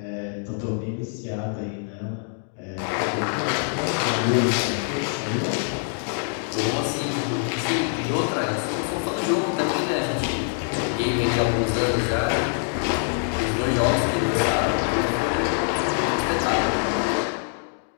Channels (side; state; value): right; silent; 62 dB below the other